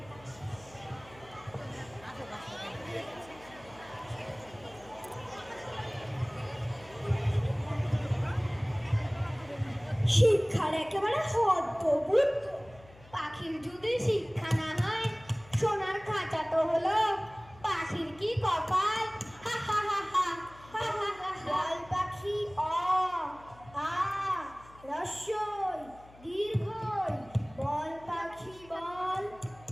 শিক্ষার একেবারে হদ্দবুদ্ধ। পাখির যদি শিক্ষা না হয়, সোনার খাঁচা তো হলো, পাখির কি কপাল! হা হা হা হা হা হা হা। বল পাখি অ আ রস্যই দীর্ঘই, বল পাখি বল।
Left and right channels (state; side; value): noise; left; hum, 23 dB below the sound